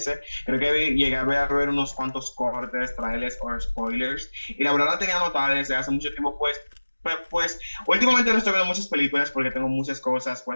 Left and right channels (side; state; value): both; inverted; correlation -1.00